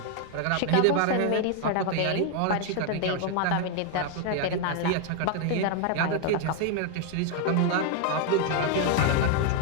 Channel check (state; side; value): different; both; correlation 0.01